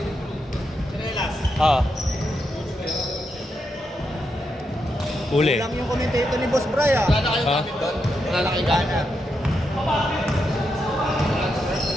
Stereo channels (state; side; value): normal; both; correlation 0.83